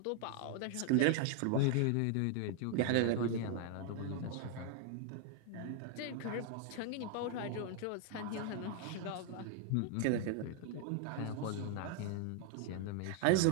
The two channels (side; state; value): both; different; correlation 0.00